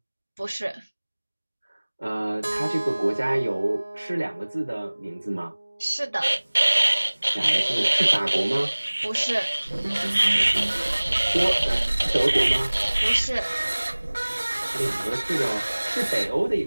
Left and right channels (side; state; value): both; inverted; correlation -1.00